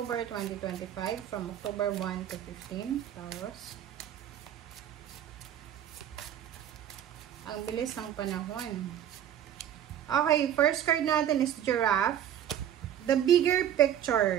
2025, from October 1 to 15, Taurus. Ang bilis ng panahon. Okay, first card natin is Giraffe. The bigger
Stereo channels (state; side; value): quieter; left; 10.3 dB